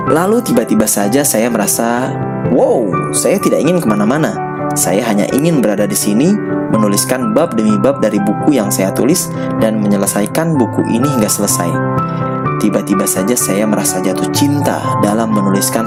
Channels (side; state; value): both; identical; correlation 1.00